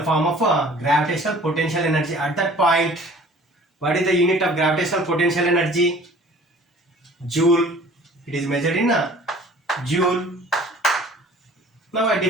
form of gravitational potential energy at that point. What is the unit of gravitational potential energy? Joule. It is measured in joule. Now I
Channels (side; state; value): both; normal; correlation 0.49